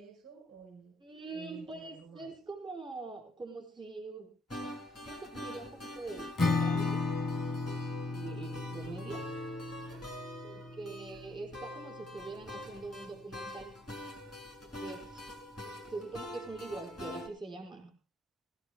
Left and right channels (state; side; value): normal; both; correlation 0.71